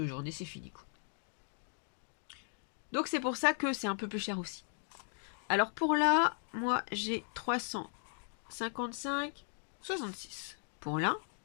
journées, c'est fini, quoi. Donc c'est pour ça que c'est un peu plus cher aussi. Alors pour là, moi j'ai 355,66 pour là.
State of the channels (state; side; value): silent; right; 53 dB below the other